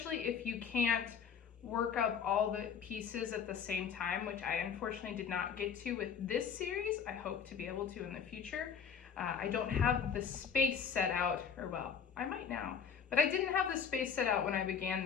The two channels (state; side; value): quieter; right; 7.0 dB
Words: if you can't work up all the pieces at the same time, which I unfortunately did not get to with this series. I hope to be able to in the future. I don't have the space set out, or well, I might now, but I didn't have the space set out when I began